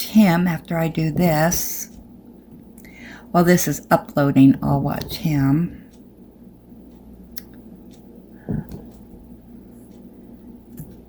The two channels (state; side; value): identical; both; correlation 1.00